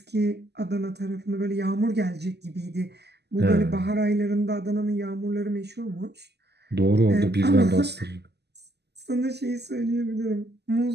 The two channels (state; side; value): late; left; 0.49 ms